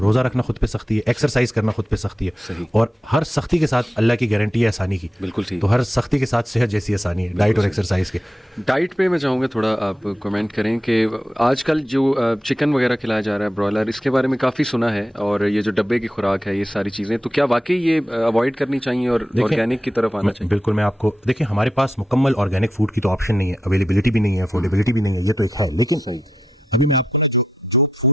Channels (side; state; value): both; normal; correlation 0.87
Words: رکھنا خود پہ سختی ہے, ایکسرسائز کرنا خود پہ سختی ہے, اور ہر سختی کے ساتھ اللہ کی گارنٹی ہے آسانی کی. بالکل ٹھیک. تو ہر سختی کے ساتھ صحت جیسی آسانی ہے ڈائٹ اور ایکسرسائز کے. ڈائٹ پہ میں چاہوں گا تھوڑا آپ کمنٹ کریں کہ آج کل جو چکن وغیرہ کھلایا جا رہا ہے برائلر, اس کے بارے میں کافی سنا ہے, اور یہ جو ڈبے کی خوراک ہے, یہ ساری چیزیں, تو کیا واقعی یہ اوائڈ کرنی چاہیے اور آرگینک کی طرف آنا چاہیے؟ بالکل. میں آپ کو دیکھیں, ہمارے پاس مکمل آرگینک فوڈ کی تو آپشن نہیں ہے, اویلیبلٹی بھی نہیں ہے, افورڈیبلٹی بھی نہیں ہے, یہ تو ایک ہے. لیکن ابھی میں آپ کو